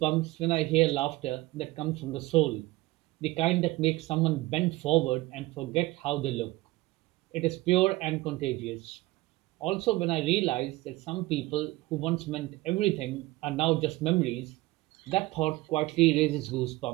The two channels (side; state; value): left; quieter; 19.6 dB